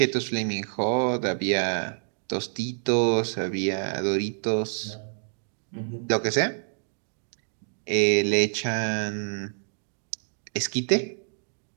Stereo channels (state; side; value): silent; left; digital silence